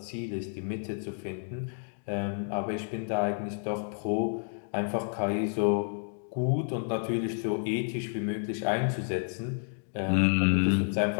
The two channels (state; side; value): silent; right; 58 dB below the other